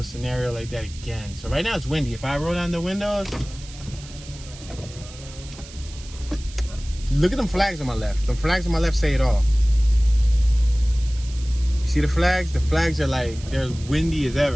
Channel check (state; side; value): noise; right; hiss, 18 dB below the sound